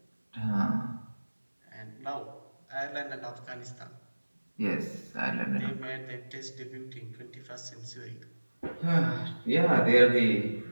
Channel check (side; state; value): both; inverted; correlation -1.00